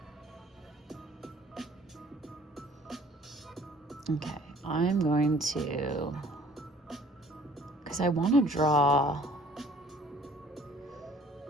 Okay, I'm going to, because I want to draw,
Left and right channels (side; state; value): both; normal; correlation 0.55